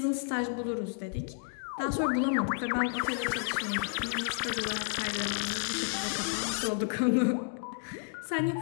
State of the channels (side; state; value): right; silent; 55 dB below the other